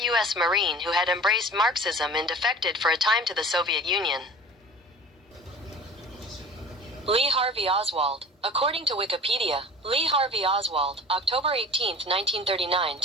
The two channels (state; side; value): normal; both; correlation 0.40